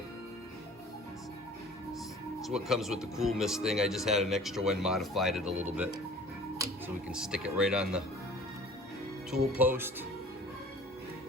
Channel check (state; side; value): normal; both; correlation 0.46